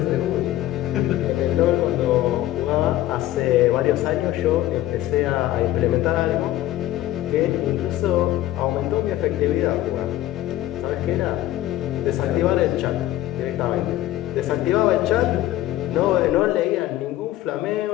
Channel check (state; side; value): quieter; right; 14.6 dB